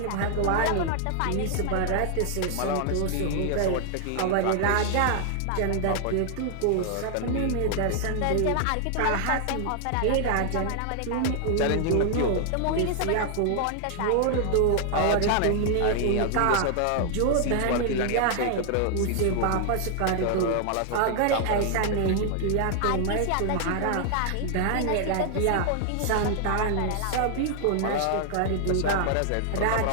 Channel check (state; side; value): different; both; correlation 0.00